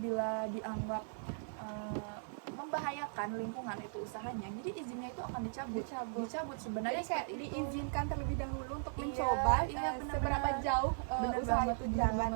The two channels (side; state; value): left; silent; digital silence